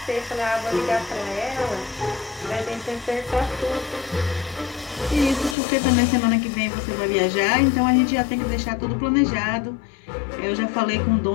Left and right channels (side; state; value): right; drops out; at 5.6 s